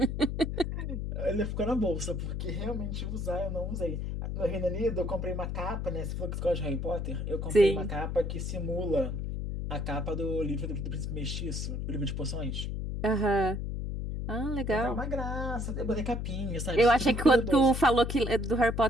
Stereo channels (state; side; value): noise; left; hum, 3 dB below the sound